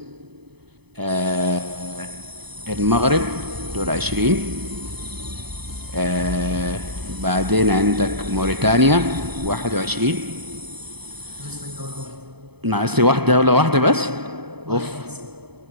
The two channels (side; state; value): left; late; 0.98 ms